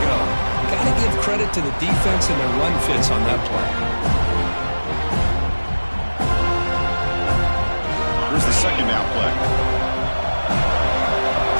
go. Got to give credit to the defense and their run fits on that play. Here's the second down play.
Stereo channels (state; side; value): inverted; both; correlation -1.00